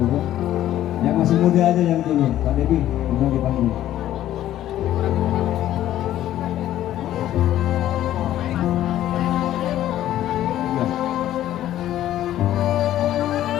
Yang masih muda aja yang turun. Pak Debi, bisa dipanggil. Ya.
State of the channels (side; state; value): right; quieter; 12.8 dB